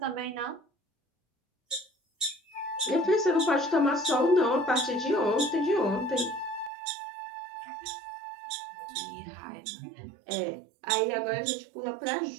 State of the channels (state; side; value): drops out; left; at 6.7 s